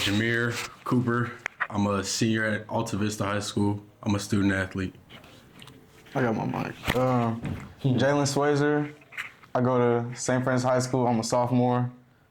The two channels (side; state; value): both; identical; correlation 1.00